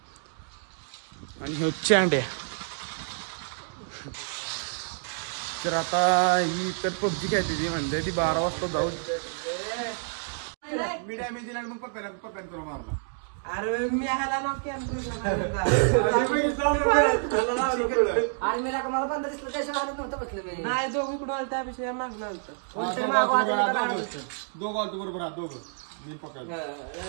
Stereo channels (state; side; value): silent; left; digital silence